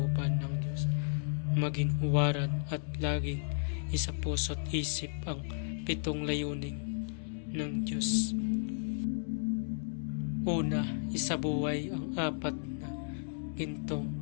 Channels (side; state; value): right; silent; 55 dB below the other